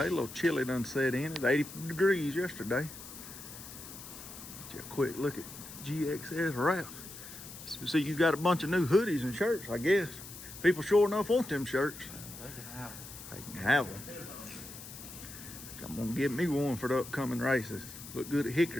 a little chilly done set in. It's 80 degrees yesterday. Just a quick look at GXS Wrap. So see, you got a bunch of new hoodies and shirts, I guess. People sure enough want them shirts. They can have them. I'm gonna get me one for the upcoming races. Look good at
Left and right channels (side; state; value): left; noise; hiss, 13 dB below the sound